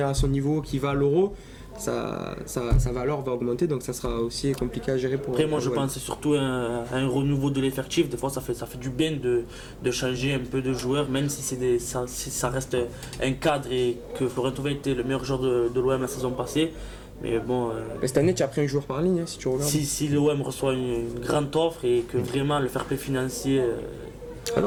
à son niveau, qu'il va à l'Euro, sa valeur va augmenter, donc ça sera aussi compliqué à gérer pour... Après moi je pense que c'est surtout un renouveau de l'effectif. Des fois ça fait du bien de changer un peu de joueurs, même si ça reste un cadre et que Florent Thauvin était le meilleur joueur de l'OM la saison passée. Mais bon, cette année tu as pris un joueur par ligne, si tu regardes. Si l'OM reçoit une grande offre et que vraiment le fair play financier Ah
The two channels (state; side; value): identical; both; correlation 1.00